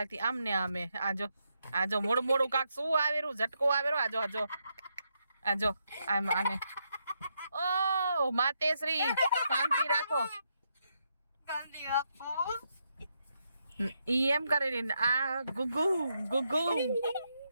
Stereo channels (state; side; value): inverted; both; correlation -0.81